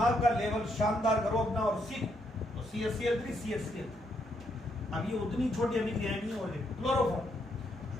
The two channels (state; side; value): normal; both; correlation 0.76